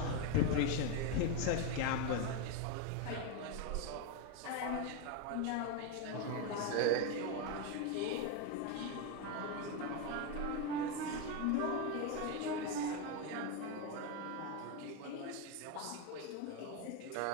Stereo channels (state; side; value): different; both; correlation 0.03